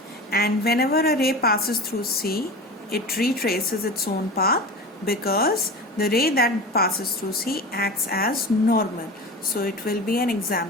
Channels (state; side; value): normal; both; correlation 0.31